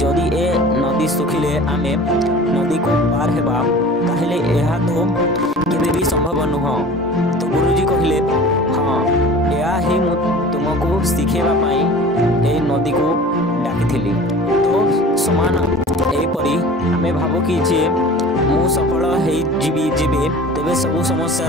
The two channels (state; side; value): normal; both; correlation 0.42